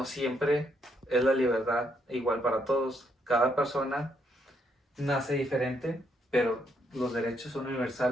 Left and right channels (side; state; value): both; normal; correlation 0.74